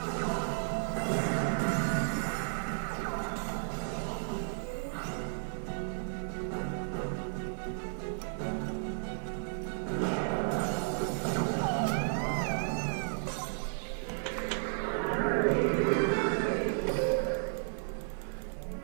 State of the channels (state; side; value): silent; left; 55 dB below the other